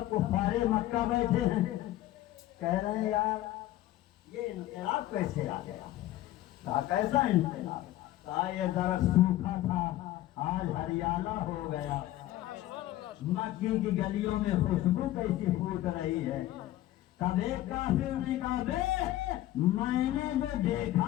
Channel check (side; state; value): right; quieter; 14.8 dB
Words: कुफारे मक्का बैठे हैं, कह रहे हैं यार ये इंकलाब कैसे आ गया? कहा कैसा इंकलाब? कहा ये जरा सूखा था आज हरियाला हो गया। मक्की की गलियों में खुशबू कैसी फूट रही है। तब एक काफिर ने कहा बे मैंने जो